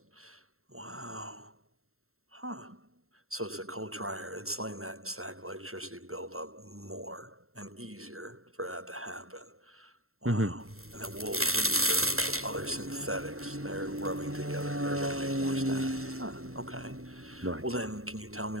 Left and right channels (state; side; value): late; left; 0.63 ms